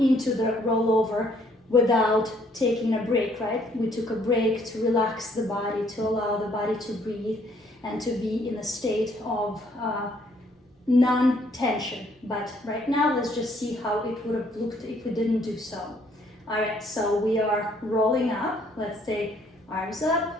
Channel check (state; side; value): normal; both; correlation 0.65